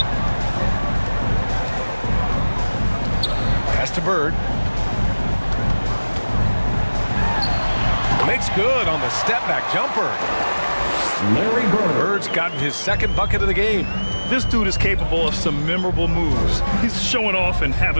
Pass to Bird. Makes good on the step-back jumper. Larry Bird. Bird's gotten his second bucket of the game. This dude is capable of some memorable moves. He's showing off and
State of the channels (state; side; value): inverted; both; correlation -1.00